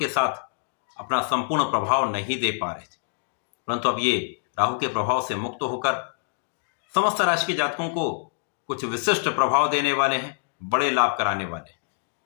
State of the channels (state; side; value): silent; right; digital silence